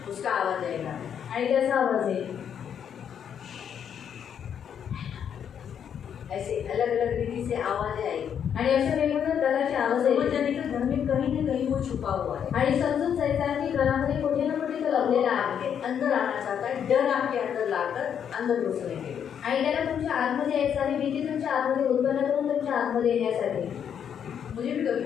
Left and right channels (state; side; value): quieter; right; 8.4 dB